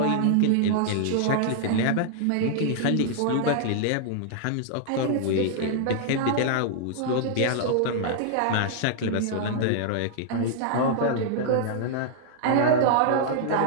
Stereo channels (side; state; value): both; different; correlation -0.01